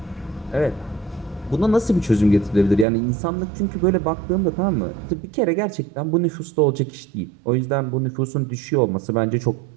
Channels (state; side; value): drops out; left; at 2.9 s